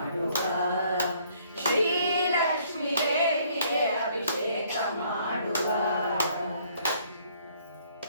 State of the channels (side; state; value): both; inverted; correlation -0.63